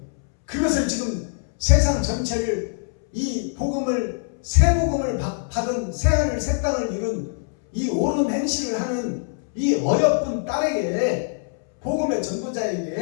그것을 지금 세상 전체를 이 복음을, 새 복음을 받은 새하늘 새 땅을 이룬 이 옳은 행실을 하는 이 어여쁜 딸에게, 복음의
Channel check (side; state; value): right; silent; 63 dB below the other